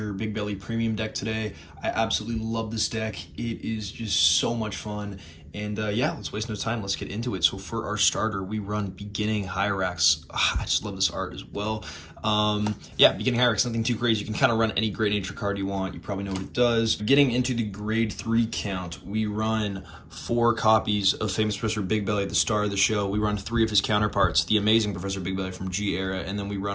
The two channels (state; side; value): identical; both; correlation 1.00